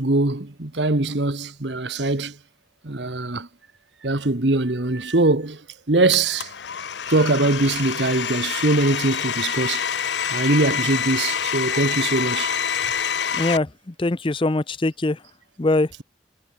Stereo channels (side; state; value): both; normal; correlation 0.31